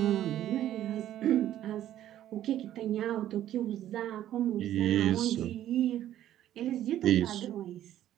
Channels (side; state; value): left; quieter; 12.2 dB